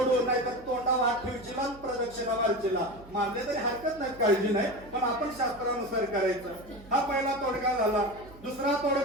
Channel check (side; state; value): right; noise; hum, 20 dB below the sound